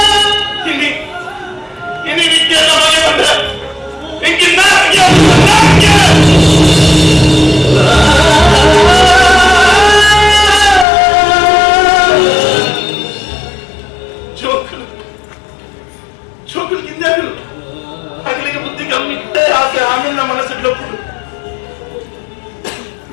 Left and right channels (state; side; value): drops out; right; at 10.9 s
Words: ಇನಿ ನಿತ್ಯೆಲ್ಲ ಮನೆ ಬಂದ್ರೆ ಚೋಕಲು ಕಿಂದಾಗಲು ಹಗಲಿಗೆ ಬುದ್ಧಿ ಕಮ್ಮಿ ಇಟ್ಟೆ ಆಸೆ ಆಮೇಲೆ ನಮ್ಮ ಮನಸ್ಸಿಡ್ಲಪ್ಪು